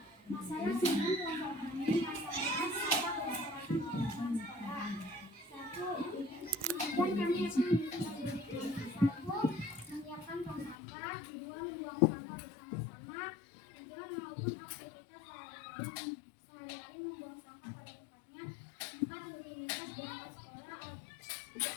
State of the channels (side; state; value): right; drops out; at 10.8 s